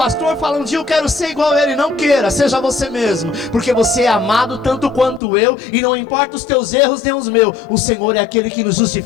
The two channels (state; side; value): drops out; right; at 5.2 s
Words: e fale: um dia eu quero ser igual a ele. Não queira, seja você mesmo, porque você é amado tanto quanto eu, e não importa os teus erros nem os meus, o Senhor é aquele que nos